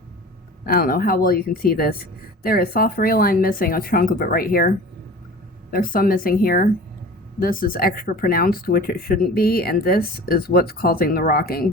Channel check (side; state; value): both; normal; correlation 0.40